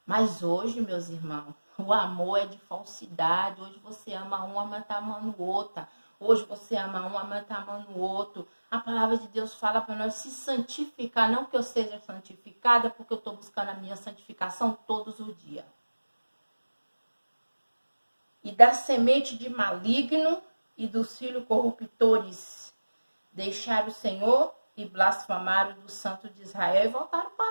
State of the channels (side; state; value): both; inverted; correlation -1.00